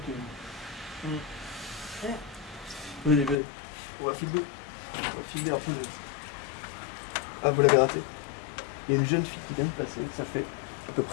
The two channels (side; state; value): right; drops out; at 3.4 s